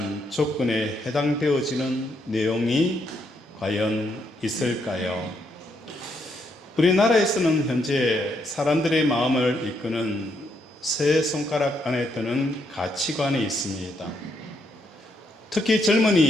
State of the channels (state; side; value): normal; both; correlation 0.76